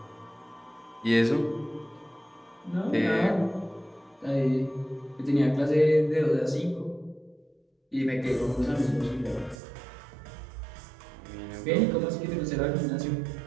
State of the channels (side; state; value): left; drops out; at 9.6 s